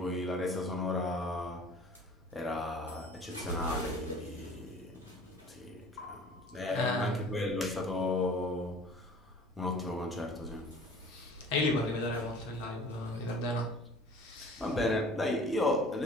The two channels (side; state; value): both; normal; correlation 0.47